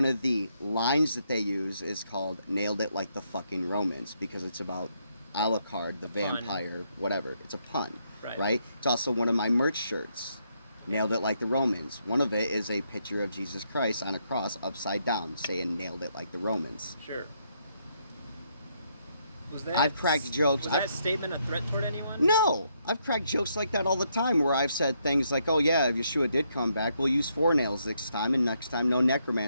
of the lines that they use is called Nailed It Like the Fucking Romans, because it's about Alucard, the vampire, whatever. It's a pun, right? It's also one of my merch shirts. Nailed It Like the Romans. One of it is a picture of Jesus Christ on a cross upside down, saying Nailed It Like the Romans. Sure. Was that, I've cracked jokes. Was that statement a threat toward anyone? No! I've cracked jokes like that all the time, where I've said things like, oh yeah, if Yeshua did come back, we'll use 4 nails this time, and next time no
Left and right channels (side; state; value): both; inverted; correlation -0.76